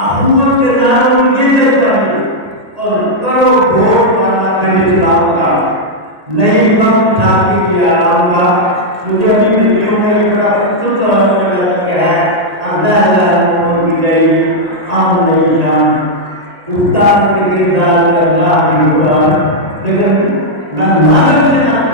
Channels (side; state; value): left; late; 1.8 ms